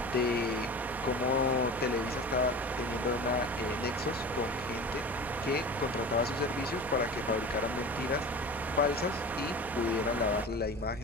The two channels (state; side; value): normal; both; correlation 0.35